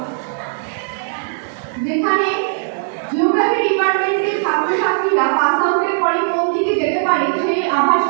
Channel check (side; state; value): left; silent; digital silence